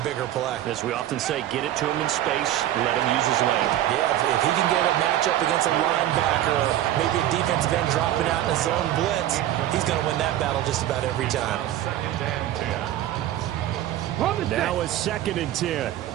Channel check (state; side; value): quieter; left; 12.8 dB